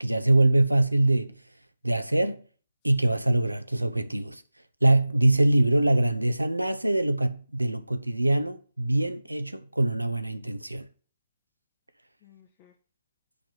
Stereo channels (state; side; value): inverted; both; correlation -0.97